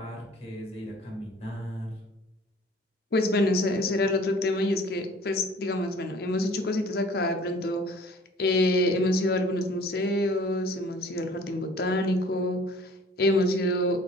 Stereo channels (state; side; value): normal; both; correlation 0.51